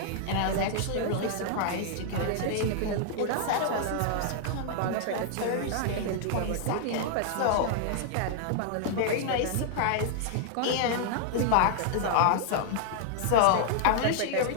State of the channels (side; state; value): both; different; correlation -0.01